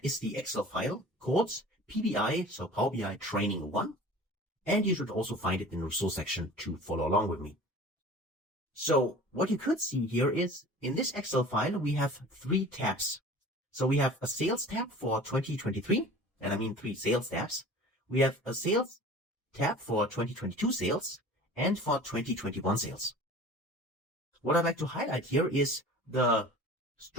is the Excel file called PBI, so Power BI Training 1. And you should also find it in the resource section to follow along with me. So what you could see here is in this Excel file, we have 3 tabs. So we have a sales tab for 2023, and I mean 3 sales tabs. We have a sales tab for 2022 sales and for 2021 sales. What I'd like to highlight here is the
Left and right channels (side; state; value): both; normal; correlation 0.42